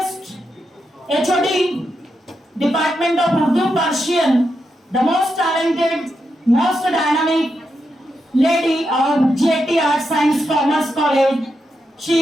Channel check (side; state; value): both; normal; correlation 0.85